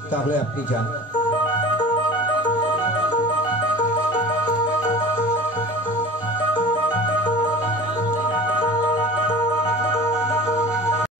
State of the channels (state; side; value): normal; both; correlation 0.38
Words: তাহলে আপনি যান।